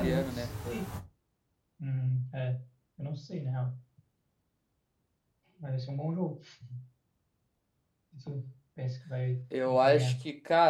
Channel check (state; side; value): identical; both; correlation 1.00